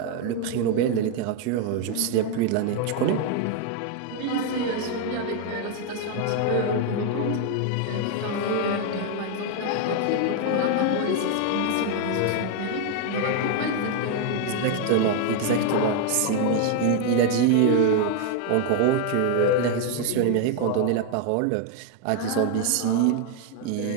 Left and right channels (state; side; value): different; both; correlation 0.00